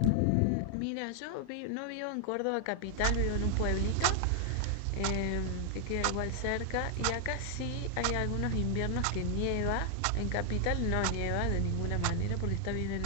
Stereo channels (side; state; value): both; different; correlation 0.00